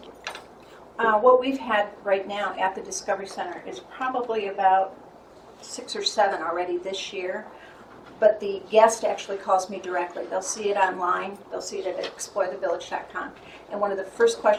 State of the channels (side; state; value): both; identical; correlation 1.00